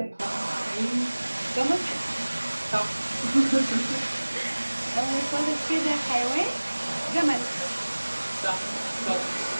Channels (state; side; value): inverted; both; correlation -1.00